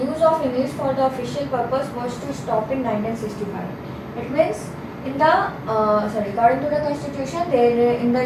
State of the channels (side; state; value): both; identical; correlation 1.00